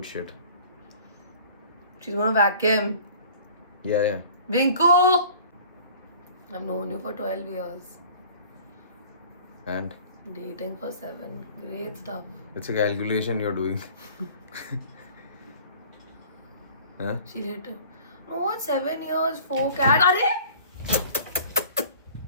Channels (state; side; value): inverted; both; correlation -0.48